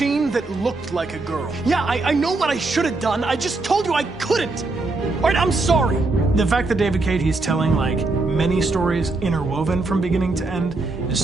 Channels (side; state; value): left; quieter; 3.4 dB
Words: that looked like a girl. Yeah, I know what I should have done. I just told you I couldn't. All right, I'm sorry. The fact that David Cade, he's telling like many stories interwoven from beginning to end